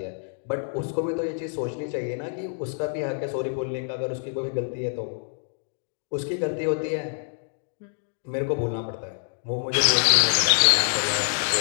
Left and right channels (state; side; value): silent; right; digital silence